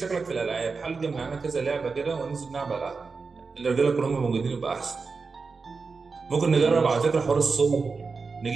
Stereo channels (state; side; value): quieter; left; 4.6 dB